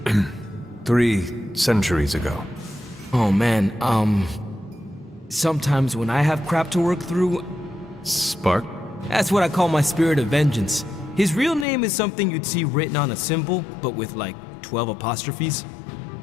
3 centuries ago. Oh man, sometimes when I have crap to work through... Spark? That's what I call my spirit of vengeance. His real name is something you'd see written on a symbol, but with like 12 apostrophes.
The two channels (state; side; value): drops out; right; at 11.7 s